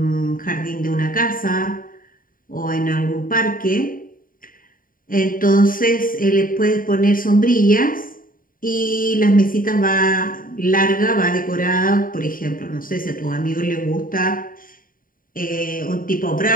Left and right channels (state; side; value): late; right; 0.41 ms